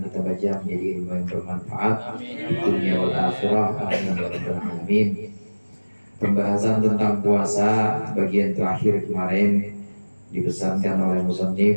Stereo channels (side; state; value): both; inverted; correlation -1.00